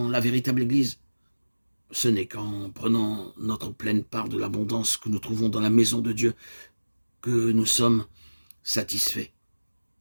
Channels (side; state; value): both; inverted; correlation -1.00